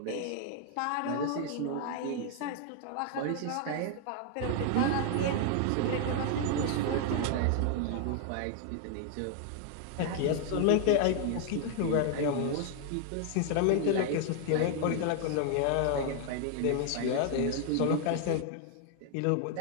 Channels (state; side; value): different; both; correlation 0.00